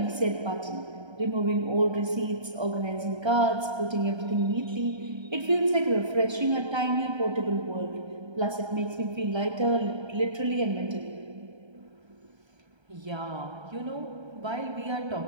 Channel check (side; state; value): left; late; 1.3 ms